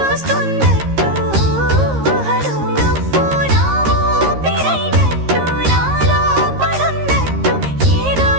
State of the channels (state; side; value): late; left; 13 ms